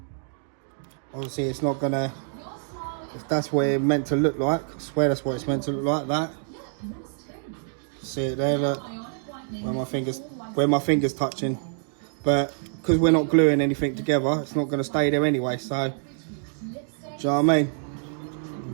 obviously it's not gonna, if that's what it's meant to look like, I swear that's what it's meant to look like, that. See it there, look, where my fingers touching. But because we're not gluing anything together, it's not gonna stay there anyway, so, do you know what I mean?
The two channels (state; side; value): silent; left; digital silence